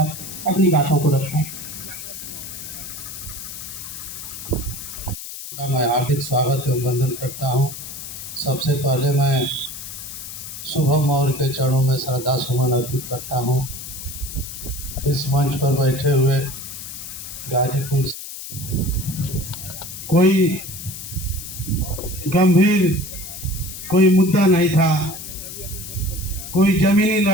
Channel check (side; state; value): left; noise; hiss, 10 dB below the sound